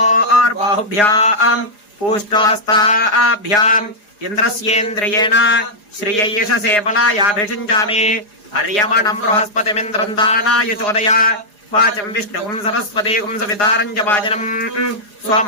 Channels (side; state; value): right; late; 4.9 ms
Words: पूष्णोस्ताभ्याम् इन्द्रस्येन्द्रियेण श्रियैषसे बलायाभिषिञ्चामि अर्यमणम् बृहस्पतिमिन्द्रम् दानाय चोदय वाचम् विष्णुकम् सरस्वतीकम् सवितारम् च वाजनम्